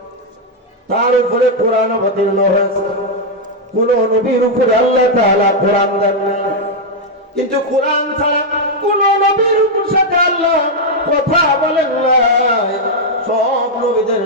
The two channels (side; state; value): both; normal; correlation 0.00